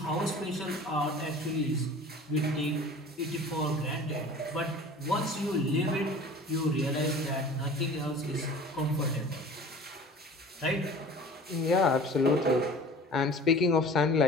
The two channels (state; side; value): normal; both; correlation 0.43